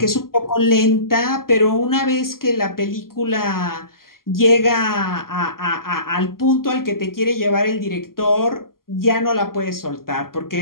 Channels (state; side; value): late; right; 0.92 ms